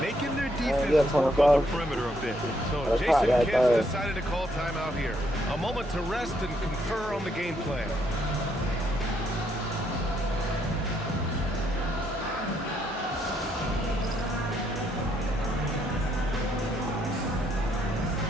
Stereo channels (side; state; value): both; normal; correlation 0.73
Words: their defense work on the perimeter a bit. So Jason Kidd decided to call timeout here. A moment to rest and confer on the game plan.